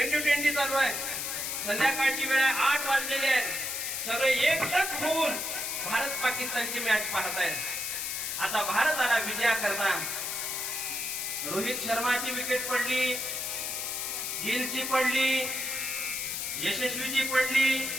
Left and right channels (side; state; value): left; noise; hiss, 3 dB below the sound